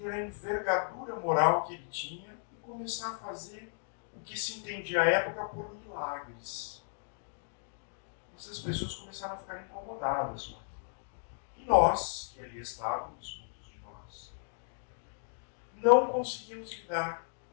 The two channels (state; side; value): silent; right; digital silence